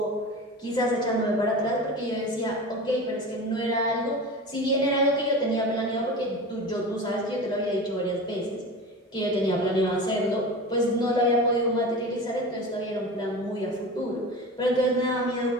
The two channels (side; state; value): both; normal; correlation 0.31